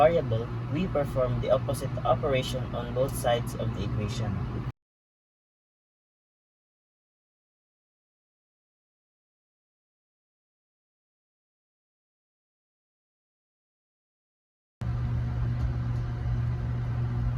we perform the opposite operation on both sides of the equation.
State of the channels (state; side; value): identical; both; correlation 1.00